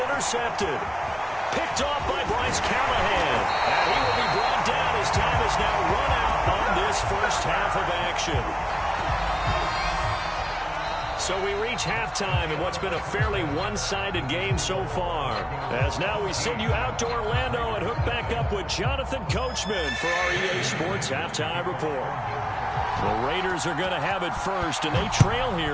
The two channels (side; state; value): both; identical; correlation 1.00